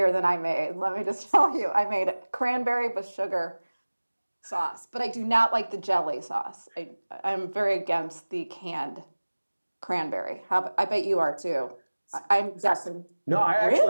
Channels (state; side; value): inverted; both; correlation -1.00